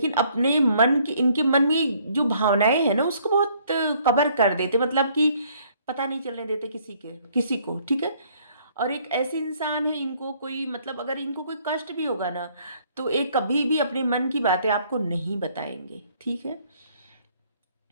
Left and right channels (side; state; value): both; inverted; correlation -0.63